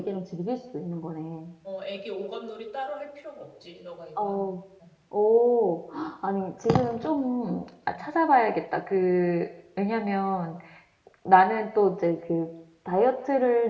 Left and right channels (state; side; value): identical; both; correlation 1.00